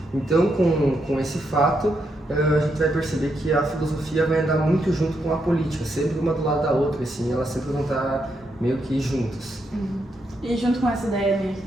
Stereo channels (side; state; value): both; normal; correlation 0.80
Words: Então, com esse fato, a gente vai perceber que a filosofia vai andar muito junto com a política, sempre uma do lado da outra, assim, elas sempre vão estar meio que juntas. E junto com essa ideia